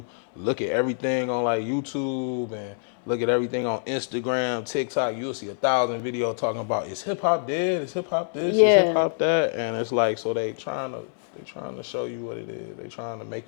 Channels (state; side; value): silent; right; digital silence